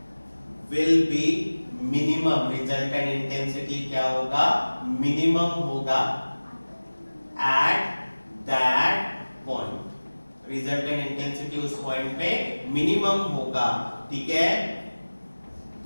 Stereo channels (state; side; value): inverted; both; correlation -1.00